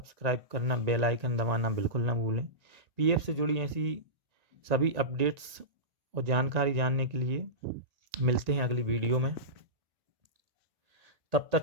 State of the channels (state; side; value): late; left; 1.9 ms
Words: करना, बेल आइकन दबाना बिल्कुल ना भूलें। पीएफ से जुड़ी ऐसी सभी अपडेट्स और जानकारी जानने के लिए मिलते हैं अगली वीडियो में। तब